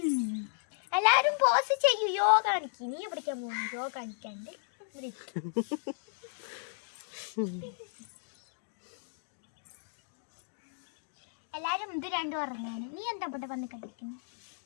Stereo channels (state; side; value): silent; right; digital silence